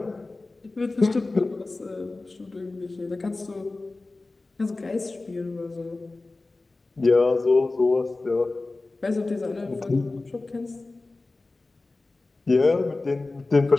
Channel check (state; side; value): quieter; right; 3.3 dB